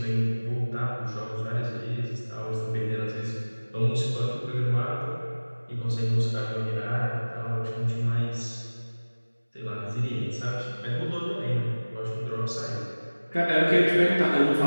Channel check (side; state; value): both; inverted; correlation -1.00